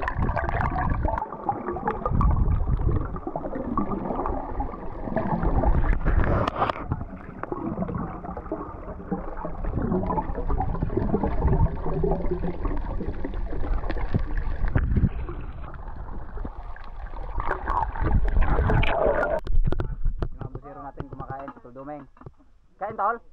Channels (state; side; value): identical; both; correlation 1.00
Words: Dumeng. Kain tol?